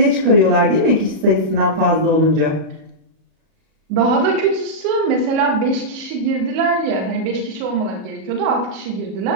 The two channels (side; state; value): left; late; 37 ms